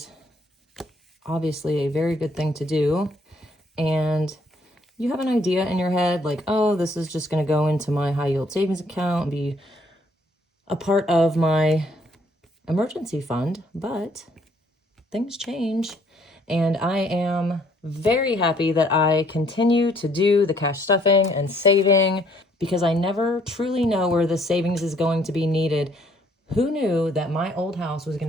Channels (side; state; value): both; normal; correlation 0.64